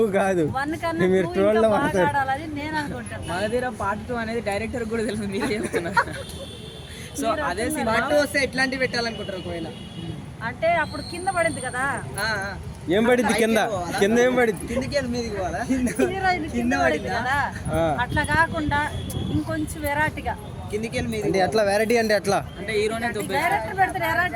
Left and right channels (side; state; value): both; identical; correlation 1.00